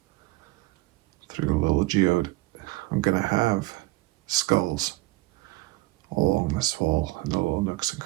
the little geode. I'm gonna have skulls all along this wall and the little nooks and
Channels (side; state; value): left; quieter; 21.0 dB